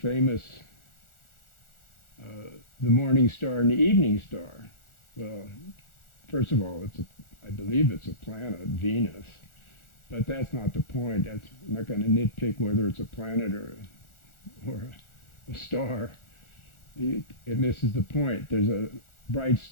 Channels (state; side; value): late; right; 1.4 ms